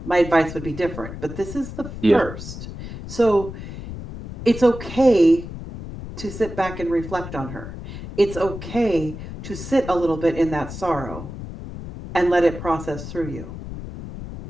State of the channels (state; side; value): noise; left; rumble, 10 dB below the sound